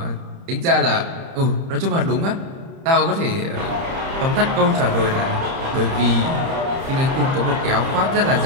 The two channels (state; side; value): late; left; 30 ms